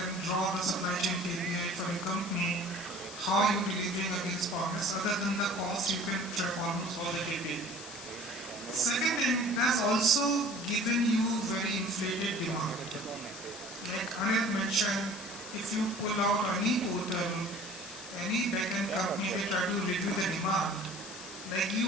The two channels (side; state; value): left; noise; hiss, 12 dB below the sound